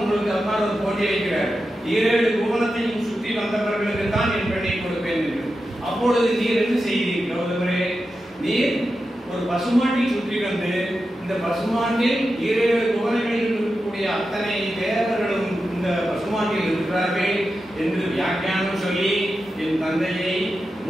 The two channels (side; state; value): both; normal; correlation 0.90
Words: அப்பா ஒரு போட்டி வைக்கிறார். 7 புவனத்தையும் சுற்றி வந்தவர்களுக்கு தான் என் பெண்ணை கொடுப்பேன் என்று. அப்பொழுது நீர் என்ன செய்தீர் கௌதமரே? நீர் ஒரு பசுமாட்டை சுற்றி வந்து இந்த பசுமாட்டில் 7 புவனங்களில் இருக்கக்கூடிய அத்தனை தேவர்களும் இந்த பசுமாட்டில் இருக்கிறார்கள் என்று வியாக்கியானம் சொல்லி என் தந்தையை